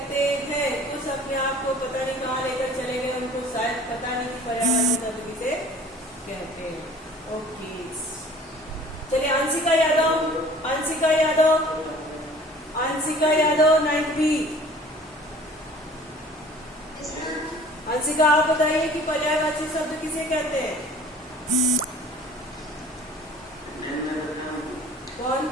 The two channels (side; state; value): both; normal; correlation 0.48